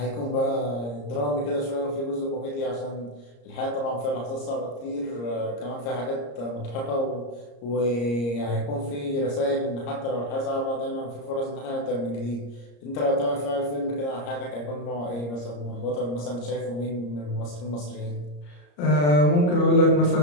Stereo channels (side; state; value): right; late; 34 ms